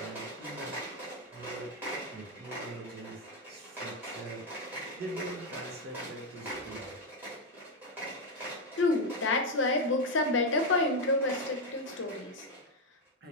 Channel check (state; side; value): normal; both; correlation 0.05